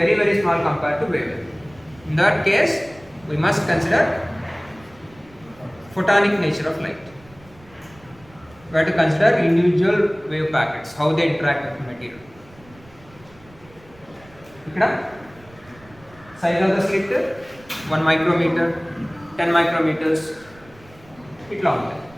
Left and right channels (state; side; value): noise; right; rumble, 25 dB below the sound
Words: very small compared to wavelength. In that case, we must consider photonic nature of light. We have to consider individual wave packets, how they interact with the material. Ikkada size of the slit 1 micrometer, 10 micrometers itla untayi.